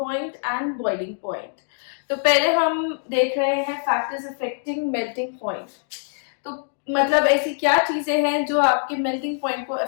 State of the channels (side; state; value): right; silent; digital silence